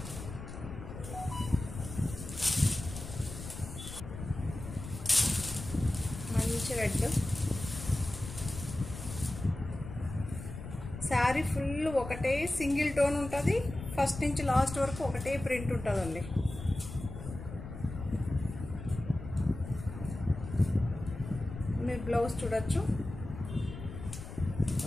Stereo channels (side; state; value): left; noise; rumble, 10 dB below the sound